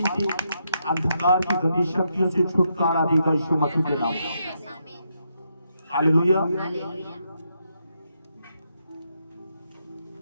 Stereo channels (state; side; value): inverted; both; correlation -0.80